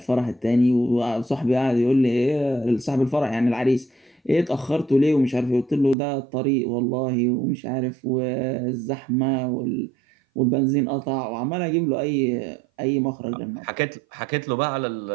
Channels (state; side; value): drops out; left; at 6.0 s